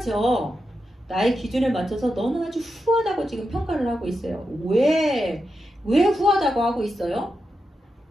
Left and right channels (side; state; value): both; normal; correlation 0.88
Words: 나의 기준에 맞춰서 너는 아주 후하다고 지금 평가를 하고 있어요. 왜 후하다고 하고 있어요?